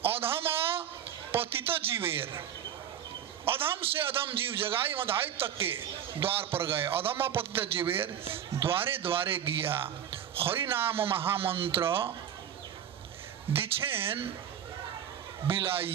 अधम पतित जीवेर, अधम से अधम जीव जगाई मधाई तक के द्वार पर गए। अधम पतित जीवेर द्वारे द्वारे गिया, हरि नाम महामंत्र दीक्षेन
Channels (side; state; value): left; quieter; 9.5 dB